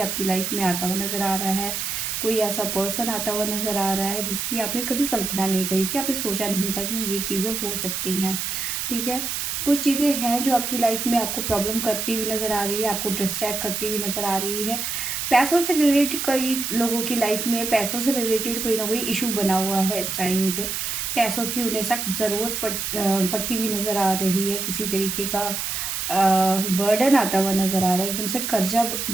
लाइफ में आता हुआ नज़र आ रहा है, कोई ऐसा पर्सन आता हुआ नज़र आ रहा है जिसकी आपने कभी कल्पना नहीं करी थी, आपने सोचा नहीं था कि ये चीज़ें हो सकती हैं। ठीक है, कुछ चीज़ें हैं जो आपकी लाइफ में आपको प्रॉब्लम करती हुई नज़र आ रही है, आपको डिस्ट्रैक्ट करती हुई नज़र आ रही है। पैसों से रिलेटेड कई लोगों की लाइफ में पैसों से रिलेटेड कोई ना कोई इशू बना हुआ है इस टाइम पे। पैसों की उन्हें सख्त ज़रूरत पड़ती हुई नज़र आ रही है। किसी तरीके का बर्डन आता हुआ नज़र आ रहा है, एकदम से कर्जा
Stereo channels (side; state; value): right; noise; hiss, 2 dB below the sound